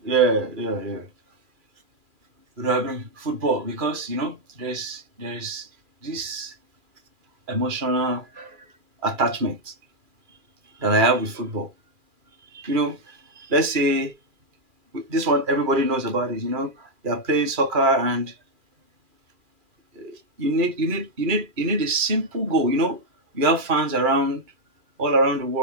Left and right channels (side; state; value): left; late; 2.4 ms